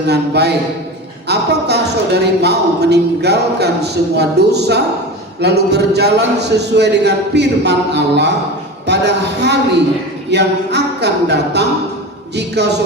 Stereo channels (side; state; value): both; normal; correlation 0.28